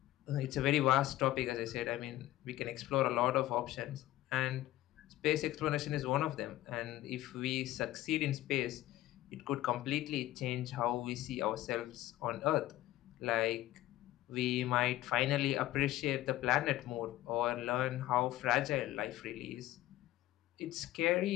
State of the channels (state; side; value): quieter; right; 15.3 dB